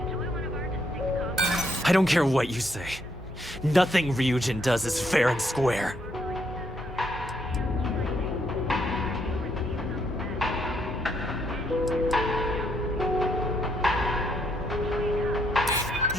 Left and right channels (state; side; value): normal; both; correlation 0.74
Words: I don't care what you say. Nothing Ryujin does is fair and square.